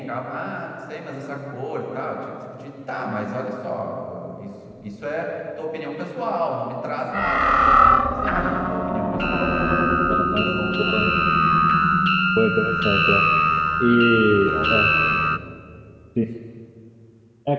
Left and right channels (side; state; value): both; identical; correlation 1.00